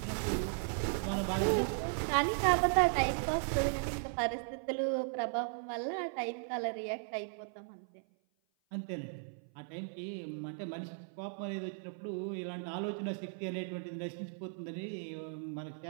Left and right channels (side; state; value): left; silent; 53 dB below the other